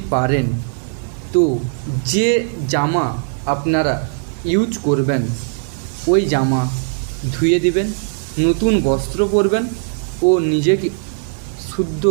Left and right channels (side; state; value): left; silent; 55 dB below the other